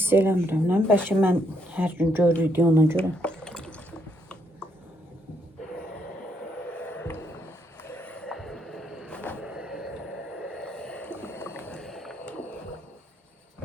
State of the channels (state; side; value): normal; both; correlation 0.74